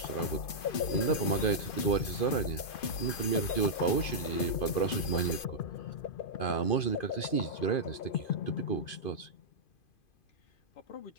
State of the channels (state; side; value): late; right; 2.5 ms